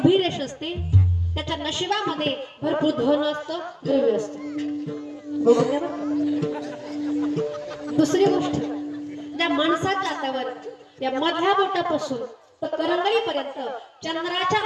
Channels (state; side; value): identical; both; correlation 1.00